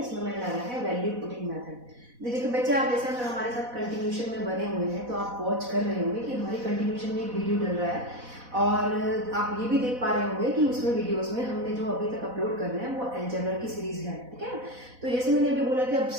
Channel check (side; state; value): left; late; 4.1 ms